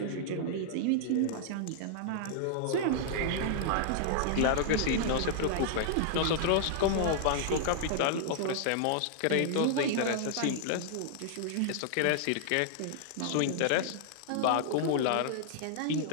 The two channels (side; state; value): both; different; correlation -0.01